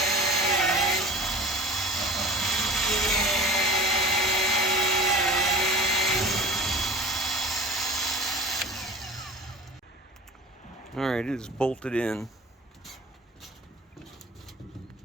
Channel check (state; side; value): normal; both; correlation 0.38